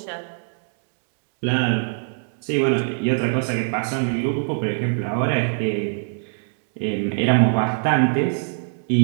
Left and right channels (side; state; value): left; silent; digital silence